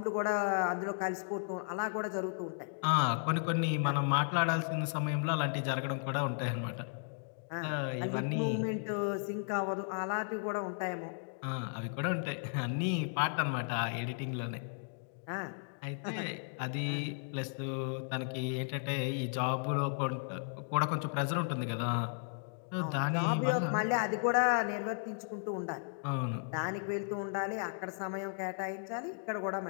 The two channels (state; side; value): silent; right; digital silence